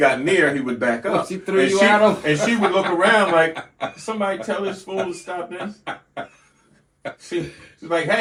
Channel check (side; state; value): both; identical; correlation 1.00